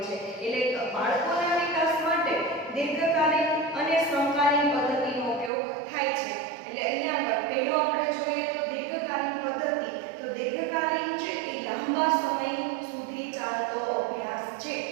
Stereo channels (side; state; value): left; drops out; at 5.5 s